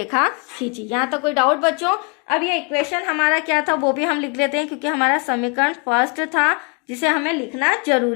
खींची। यहाँ तक कोई डाउट बच्चों। अब ये इक्वेशन हमारा क्या था वो भी हम लिख लेते हैं, क्योंकि हमारा समीकरण फर्स्ट था जिसे हमें लिखना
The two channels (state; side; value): quieter; right; 34.1 dB